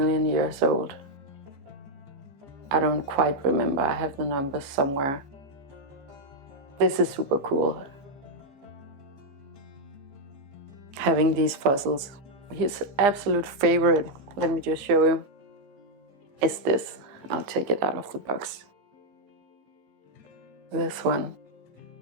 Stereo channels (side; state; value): left; late; 15 ms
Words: years old. I don't quite remember, I have the numbers somewhere. This is super cool, having these fossils. His absolute favorite, let me just show you, is this. I'll take it out of the box. This one.